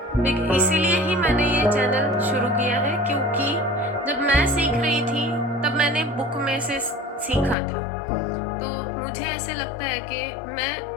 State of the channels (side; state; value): right; drops out; at 7.6 s